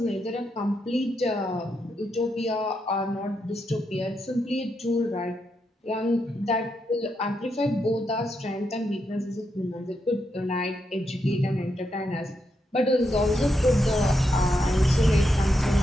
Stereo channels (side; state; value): both; normal; correlation 0.82